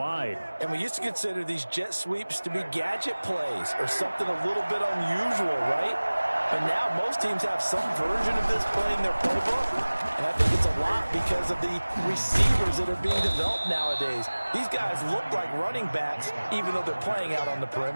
And we used to consider these jet sweeps to be gadget plays or something a little bit unusual, right? But now most teams have some version of this play in their playbook. And I think it's a lot because of the receivers that are being developed nowadays. These guys look like running backs even though they're playing out on the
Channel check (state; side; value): inverted; both; correlation -1.00